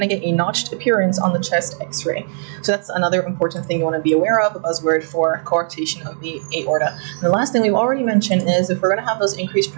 to get a notched appearance on the chest x-ray. So that's another important thing you want to be aware of, a buzzword for coarctation of the aorta. And the last thing we've already mentioned is if we're going to have those increased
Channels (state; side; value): silent; left; digital silence